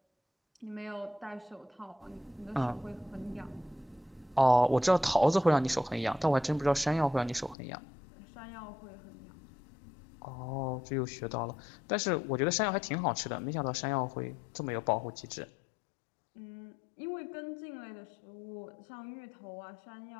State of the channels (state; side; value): drops out; right; at 7.6 s